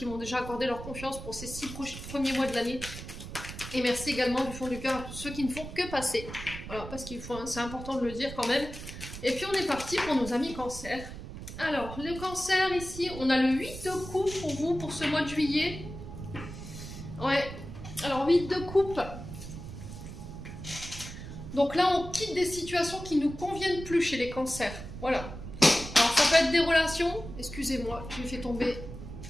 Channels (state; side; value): noise; right; rumble, 11 dB below the sound